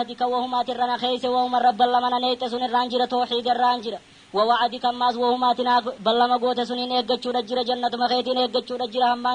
وهما ترنا خيس وهما رب اللمنا نيت سن الرانجرة توحيد الرانجرة ووعدك ماز وهما تنا بلما قوت سنين إيقاتشو رجرة جنة مخيتين إيقاتشو رجرة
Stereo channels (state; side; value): identical; both; correlation 1.00